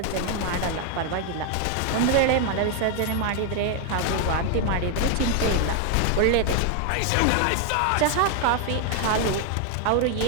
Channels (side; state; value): both; different; correlation 0.01